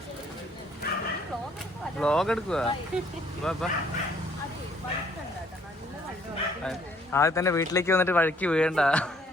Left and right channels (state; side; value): normal; both; correlation 0.63